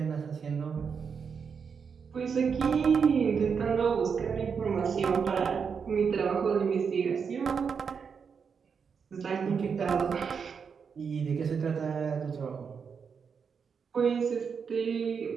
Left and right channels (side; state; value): left; quieter; 6.2 dB